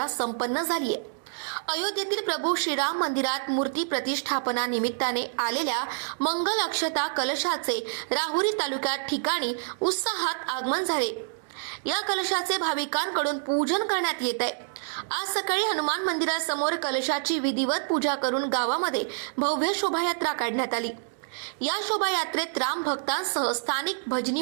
संपन्न झाली आहे। अयोध्येतील प्रभू श्रीराम मंदिरात मूर्ती प्रतिष्ठापना निमित्ताने आलेल्या मंगल अक्षता कलशाचे राहुरी तालुक्यात ठिकाणी उत्साहात आगमन झाले। या कलशाचे भाविकांकडून पूजन करण्यात येत आहे। आज सकाळी हनुमान मंदिरासमोर कलशाची विधिवत पूजा करून गावामध्ये भव्य शोभायात्रा काढण्यात आली। या शोभायात्रेत राम भक्तांसह स्थानिक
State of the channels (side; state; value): left; silent; digital silence